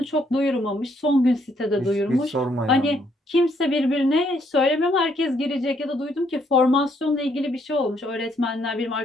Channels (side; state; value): both; normal; correlation 0.71